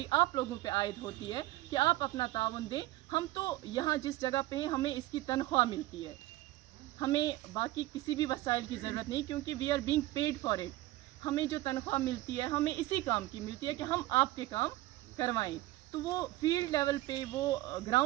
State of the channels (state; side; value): quieter; left; 17.1 dB